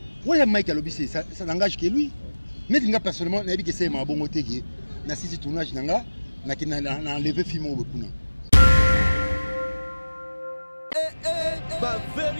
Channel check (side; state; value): both; inverted; correlation -1.00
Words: Ouais, Mike Alobissé, ça n'engage que lui. Mais il personnellement, n'a que c'est ma bonne côté qui na sisi tournage nanga, na qui na enlevé film au Bokuna. Ba